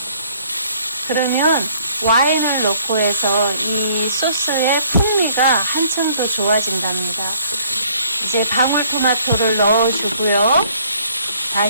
그러면 와인을 넣고 해서 이 소스의 풍미가 한층 더 좋아진답니다. 이제 방울토마토를 넣어주고요.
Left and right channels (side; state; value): both; inverted; correlation -0.61